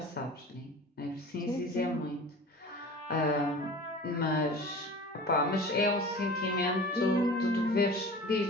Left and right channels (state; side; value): normal; both; correlation 0.39